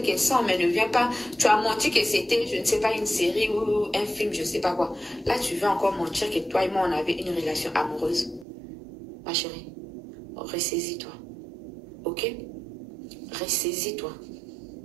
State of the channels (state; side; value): drops out; left; at 8.5 s